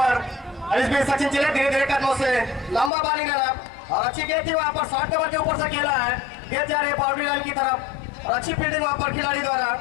इस बीच सचिन चिले धीरे धीरे कदमों से लंबा बॉलिंग रन और अच्छी गेंद थी वहां पर 60 नंबर के ऊपर से खेला है, गेंद जा रही है बाउंड्री लाइन की तरफ और अच्छी फील्डिंग वहां पर खिलाड़ी द्वारा।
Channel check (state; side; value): drops out; right; at 2.9 s